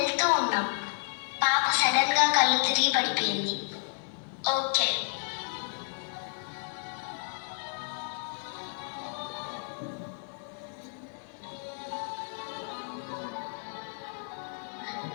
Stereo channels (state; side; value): silent; right; 57 dB below the other